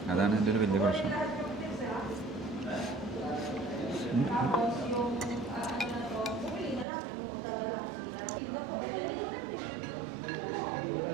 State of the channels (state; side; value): drops out; left; at 6.9 s